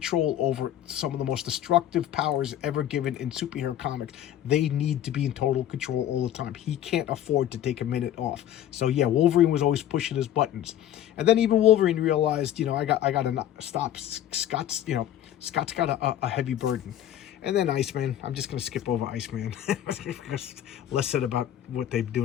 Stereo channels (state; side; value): quieter; right; 11.4 dB